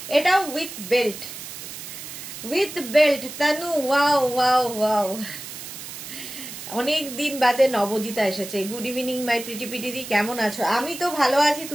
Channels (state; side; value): noise; right; hiss, 11 dB below the sound